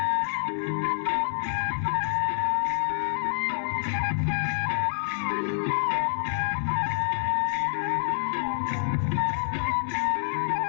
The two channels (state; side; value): silent; right; 59 dB below the other